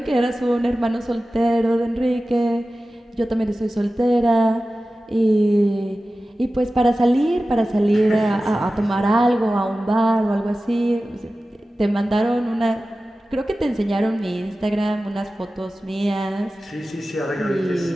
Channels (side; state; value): both; normal; correlation 0.95